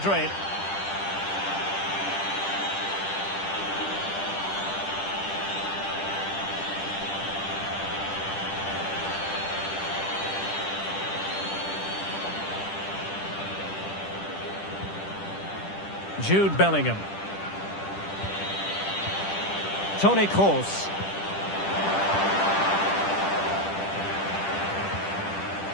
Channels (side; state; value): right; late; 10 ms